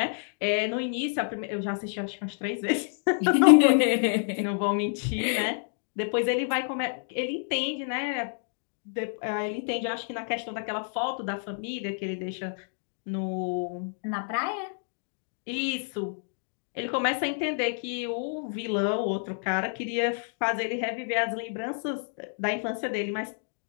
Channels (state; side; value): silent; right; digital silence